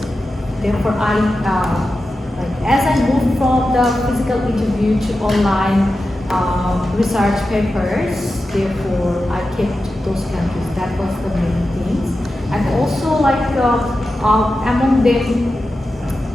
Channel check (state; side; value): normal; both; correlation 0.92